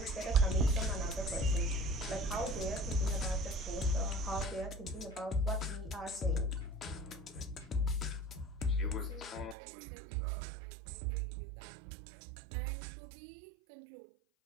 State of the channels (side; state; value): left; drops out; at 9.6 s